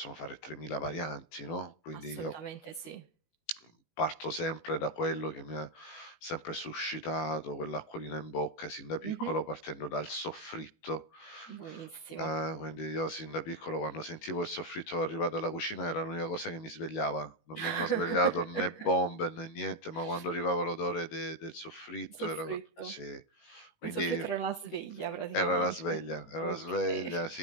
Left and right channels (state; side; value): late; right; 18 ms